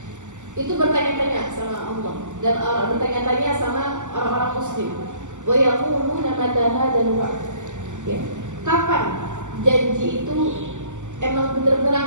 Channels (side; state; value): left; late; 0.85 ms